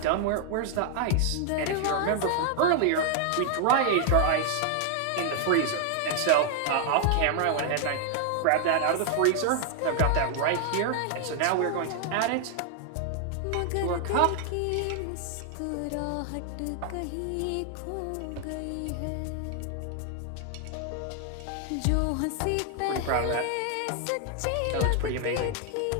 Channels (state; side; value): different; both; correlation 0.00